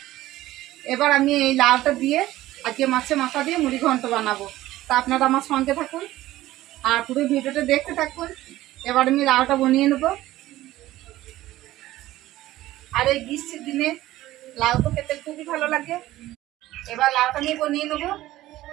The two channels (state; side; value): quieter; left; 15.8 dB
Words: এবার আমি এই লাউটা দিয়ে আজকে মাছের মাথা দিয়ে মুড়ি ঘন্ট বানাবো। তা আপনারা আমার সঙ্গে থাকুন আর পুরো ভিডিওটা দেখতে থাকুন। এবার আমি লাউটা বানিয়ে নেব। আর এই গ্রীষ্মের দিনে লাউ তো খেতে খুবই ভালো লাগে। এবার লাউটা আমি বানিয়ে নেবো।